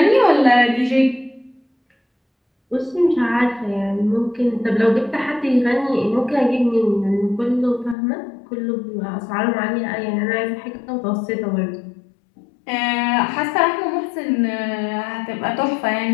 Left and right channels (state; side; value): drops out; right; at 8.0 s